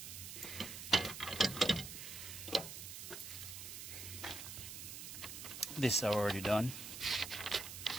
This I've already done.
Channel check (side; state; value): right; noise; hiss, 9 dB below the sound